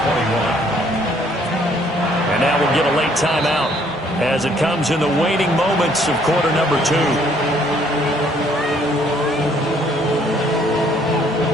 And that will get a late timeout as it comes in the waning moments of quarter number 2.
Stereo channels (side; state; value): both; normal; correlation 0.64